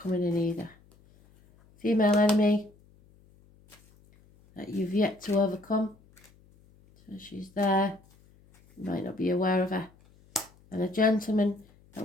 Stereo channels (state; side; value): noise; left; hum, 29 dB below the sound